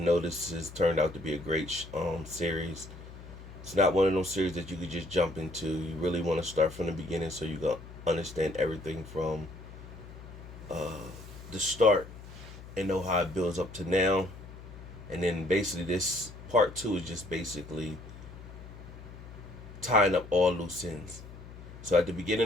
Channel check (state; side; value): noise; left; hum, 15 dB below the sound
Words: this has turned out to be a great series. It's not one of those series that you could just jump into. You really want to start from the beginning so you can understand everything from uh, the start and know how it builds up to now. And then basically this part two is just basically tying up all loose ends. So at the